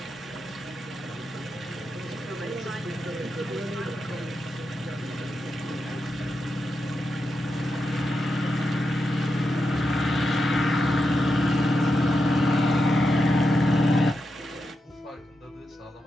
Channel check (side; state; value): both; normal; correlation 0.87